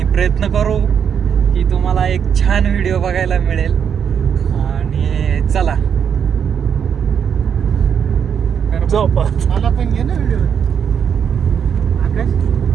प्रयत्न करू की तुम्हाला एक छान व्हिडिओ बघायला मिळेल. आणि चला मला पण घे ना व्हिडिओ. आकाश,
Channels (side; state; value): left; quieter; 7.7 dB